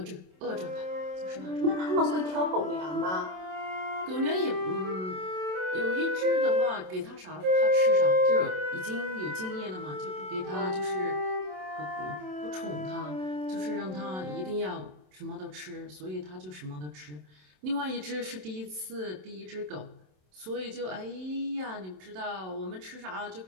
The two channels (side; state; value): left; late; 27 ms